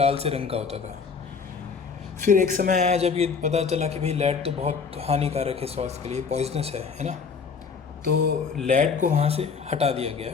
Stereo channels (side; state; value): right; quieter; 5.6 dB